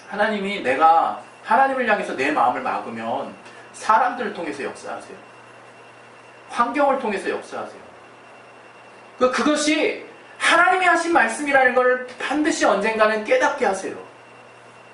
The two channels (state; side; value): identical; both; correlation 1.00